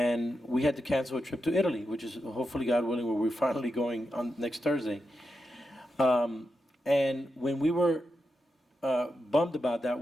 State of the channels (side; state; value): both; normal; correlation 0.86